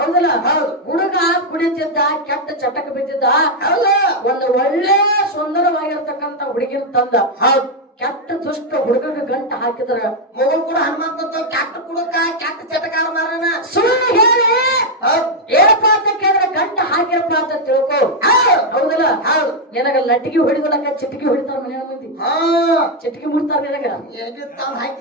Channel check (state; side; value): normal; both; correlation 0.01